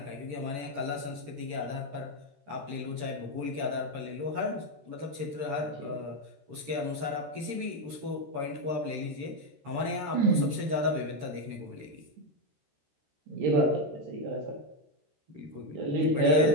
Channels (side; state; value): left; late; 13 ms